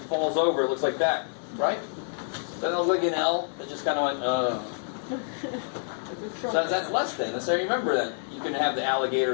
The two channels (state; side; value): silent; right; digital silence